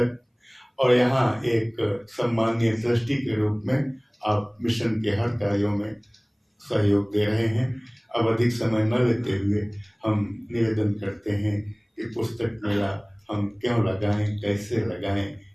और यहाँ एक सम्मानीय ट्रस्टी के रूप में आप मिशन के हर कार्यों में सहयोग दे रहे हैं। अब अधिक समय न लेते हुए हम निवेदन करते हैं कि पुस्तक मेला हम क्यों लगाएं, कैसे लगाएं,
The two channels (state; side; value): identical; both; correlation 1.00